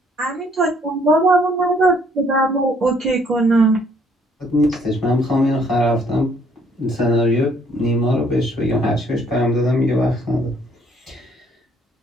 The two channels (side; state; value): both; normal; correlation 0.64